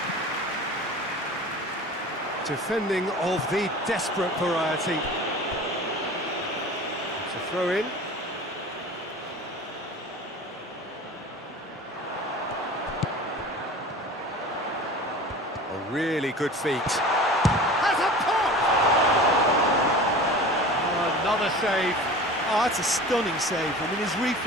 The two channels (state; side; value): normal; both; correlation 0.38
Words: Defending of the desperate variety. It's a throw in. A really good feat. Has a pop! Oh, another save. Oh, that's a stunning save. I mean, his